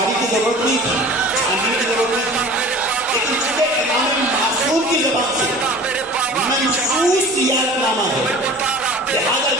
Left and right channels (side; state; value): both; normal; correlation 0.42